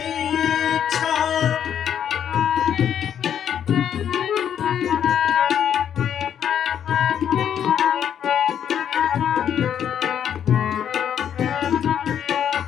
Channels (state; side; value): quieter; right; 9.1 dB